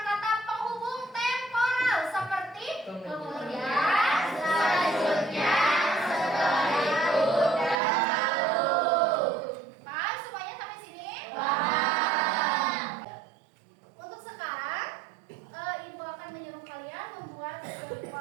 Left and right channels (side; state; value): left; drops out; at 7.8 s